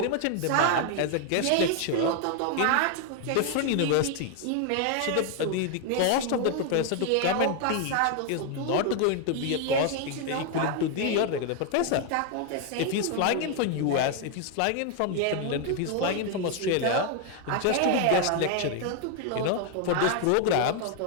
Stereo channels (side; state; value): both; different; correlation 0.01